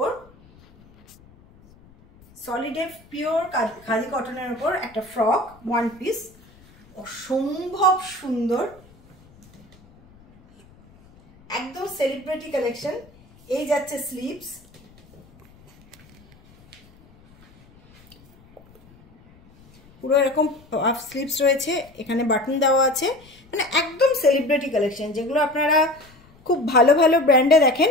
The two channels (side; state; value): left; noise; rumble, 27 dB below the sound